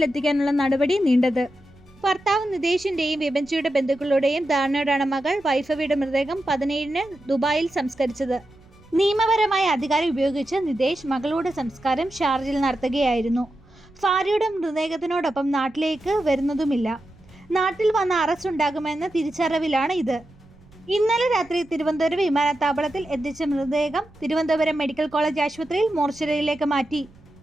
നടപടി നീണ്ടത്. ഭർത്താവ് നിതേഷിന്റെയും വിഭജിയുടെ ബന്ധുക്കളുടെയും ധാരണയോടാണ് മകൾ വൈഭവിയുടെ മൃതദേഹം 17-ന് ദുബായിൽ സംസ്കരിച്ചത്. നിയമപരമായ അധികാരം ഉപയോഗിച്ച് നിതേഷ് മകളുടെ സംസ്കാരം ഷാർജയിൽ നടത്തുകയായിരുന്നു. ഭാര്യയുടെ മൃതദേഹത്തിനോടൊപ്പം നാട്ടിലേക്ക് വരുന്നതുമില്ല. നാട്ടിൽ വന്ന അറസ്റ്റ് ഉണ്ടാകുമെന്ന തിരിച്ചറിവിലാണ് ഇത്. ഇന്നലെ രാത്രി തിരുവനന്തപുരം വിമാനത്താവളത്തിൽ എത്തിച്ച മൃതദേഹം തിരുവനന്തപുരം മെഡിക്കൽ കോളേജ് ആശുപത്രിയിൽ മോർച്ചറിയിലേക്ക് മാറ്റി.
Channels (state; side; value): noise; right; rumble, 27 dB below the sound